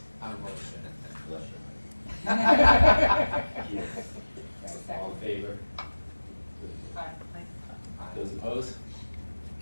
our motion. All in favor? Aye. Those opposed?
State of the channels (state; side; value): inverted; both; correlation -1.00